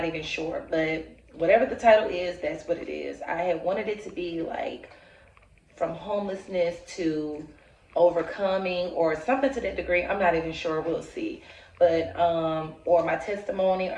even sure. But whatever the title is, that's what it is. I had wanted it to be like from homelessness to overcoming or something to that degree. I'm not even sure. We'll see. But or my testimony.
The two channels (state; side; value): identical; both; correlation 1.00